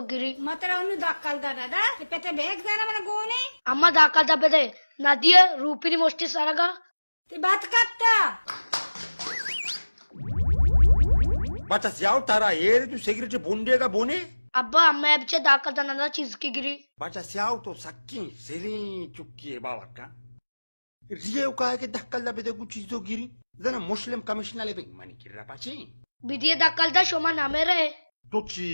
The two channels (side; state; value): both; inverted; correlation -1.00